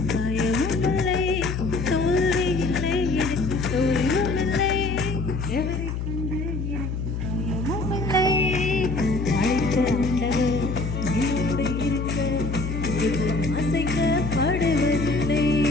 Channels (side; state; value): left; noise; hum, 3 dB below the sound